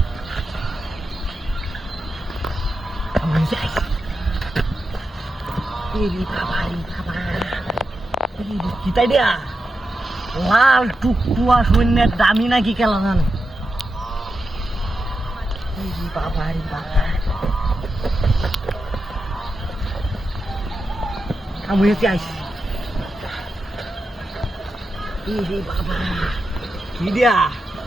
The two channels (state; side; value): normal; both; correlation 0.88